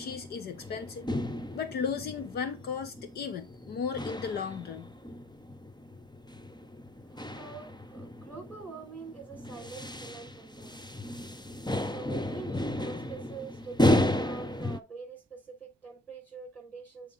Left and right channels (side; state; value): both; normal; correlation 0.64